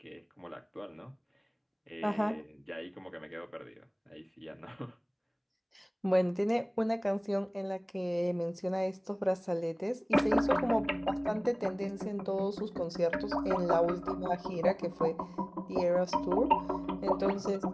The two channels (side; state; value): both; identical; correlation 1.00